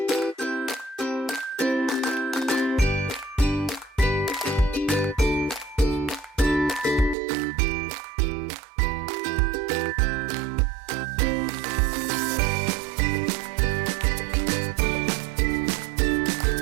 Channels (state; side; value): drops out; left; at 7.2 s